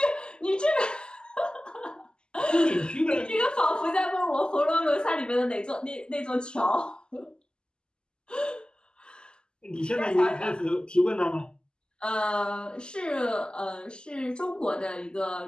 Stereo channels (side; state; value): right; late; 0.047 ms